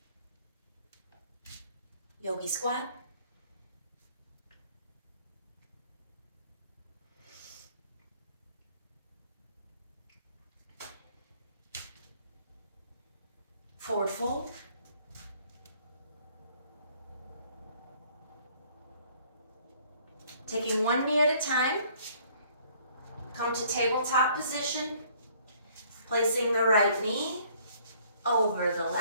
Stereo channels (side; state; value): both; inverted; correlation -0.60